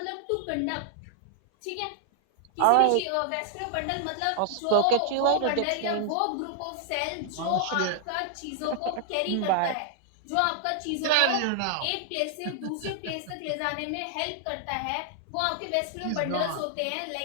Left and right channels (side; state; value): both; different; correlation 0.00